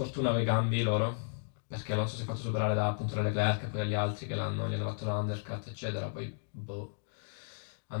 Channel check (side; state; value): right; silent; digital silence